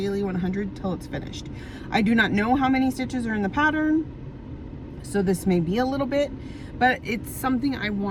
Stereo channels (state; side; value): identical; both; correlation 1.00